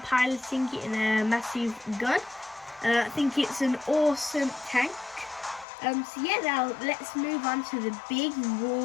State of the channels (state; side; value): drops out; right; at 5.7 s